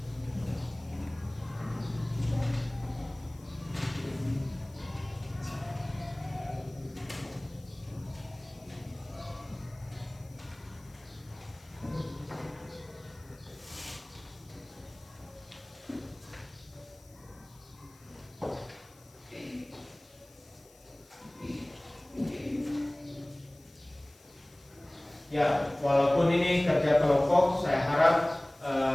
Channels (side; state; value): left; noise; hiss, 26 dB below the sound